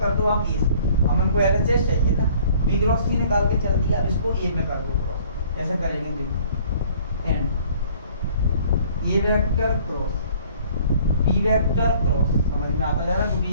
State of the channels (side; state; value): both; inverted; correlation -0.55